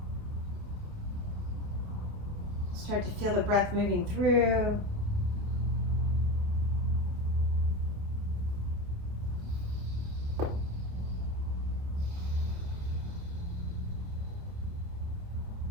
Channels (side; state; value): left; late; 29 ms